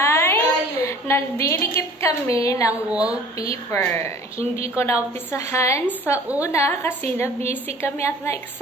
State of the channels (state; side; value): normal; both; correlation 0.48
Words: nagdidikit kami ng wallpaper. Hindi ko naumpisahan sa una kasi na-busy kami at